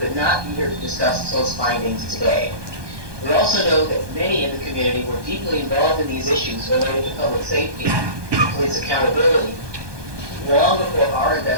could not be here to discuss those findings today. We also know that many in the community were deeply involved in these issues related to public safety and police accountability long before our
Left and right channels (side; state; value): left; late; 1.2 ms